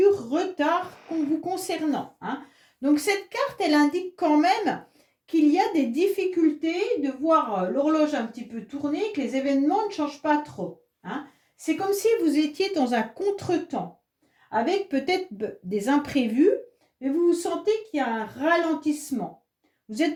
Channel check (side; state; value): both; identical; correlation 1.00